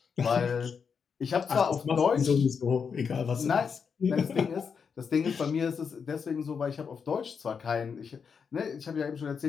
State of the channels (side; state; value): right; quieter; 6.2 dB